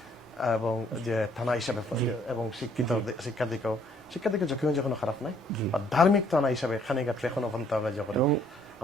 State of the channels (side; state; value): both; normal; correlation 0.64